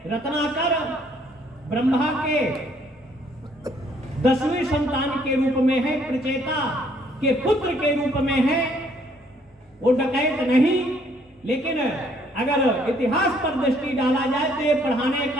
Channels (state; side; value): normal; both; correlation 0.65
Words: रत्नाकर ब्रह्मा के 10वीं संतान के रूप में है, प्रचेता के पुत्र के रूप में है, वो डकैत नहीं। लेकिन अगर इतिहास पर दृष्टि डाला जाए तो ये पढ़ाने